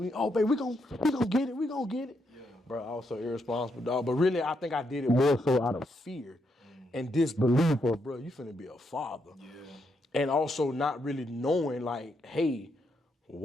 Oh, baby, we gonna get it. Bro, I was so irresponsible, dog. But really, I think I did it more so out of fear and disbelief of, bro, you finna be a father. Yeah. And also not really knowing, like, hey,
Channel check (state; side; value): normal; both; correlation 0.79